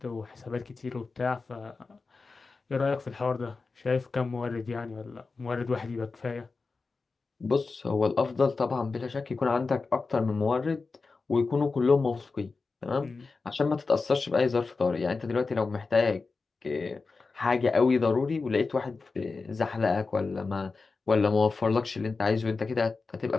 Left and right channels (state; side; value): quieter; right; 4.2 dB